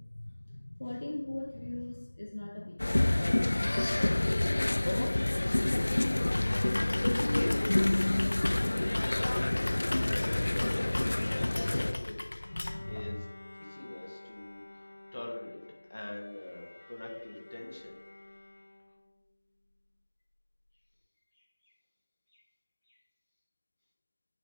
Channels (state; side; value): inverted; both; correlation -1.00